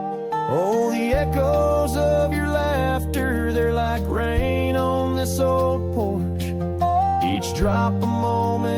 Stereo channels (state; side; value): identical; both; correlation 1.00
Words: Oh, the echoes of your laughter, they're like rain on this old porch, each drop a